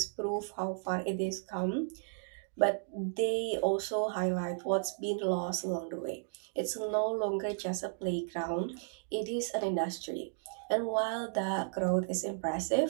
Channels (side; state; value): left; silent; digital silence